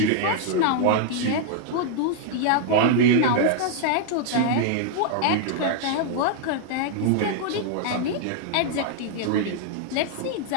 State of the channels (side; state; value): both; different; correlation 0.00